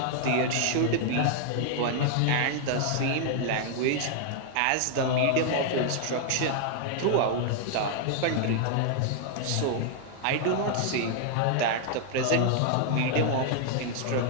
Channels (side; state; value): both; different; correlation 0.00